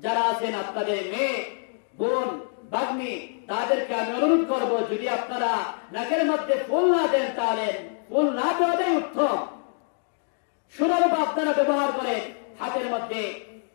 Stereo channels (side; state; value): right; silent; 60 dB below the other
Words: যারা আছেন আপনাদের মেয়ে, বোন, ভাগ্নি, তাদেরকে আমি অনুরোধ করব, যদি আপনারা নাকের মধ্যে ফুল না দেন, তাহলে ফুল না দেওয়াটাই উত্তম। সুরূপ আপনারা ব্যবহার করেন, হাতের মধ্যে,